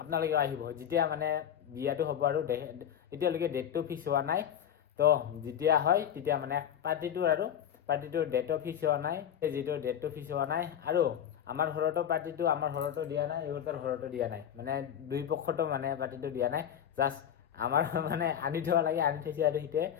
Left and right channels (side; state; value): right; quieter; 9.5 dB